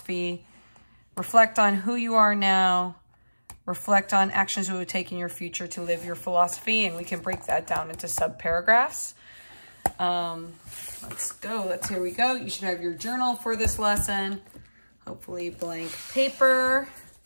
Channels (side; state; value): both; inverted; correlation -1.00